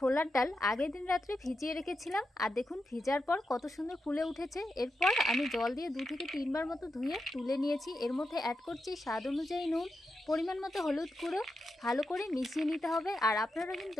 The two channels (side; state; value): both; normal; correlation 0.87